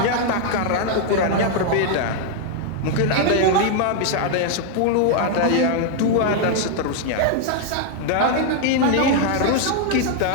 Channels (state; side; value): different; both; correlation 0.00